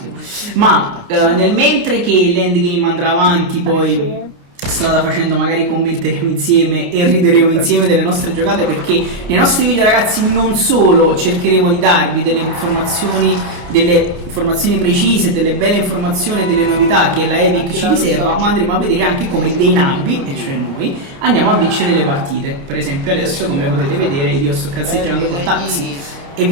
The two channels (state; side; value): late; left; 29 ms